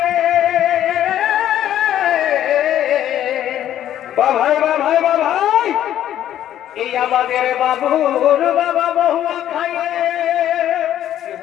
ভাই ভাই ভাই এই আমাদের বাবুর বাবা বহুয়া খাইয়ে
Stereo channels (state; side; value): quieter; right; 11.5 dB